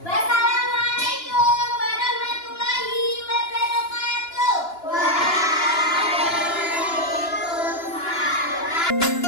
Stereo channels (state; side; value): late; right; 2.9 ms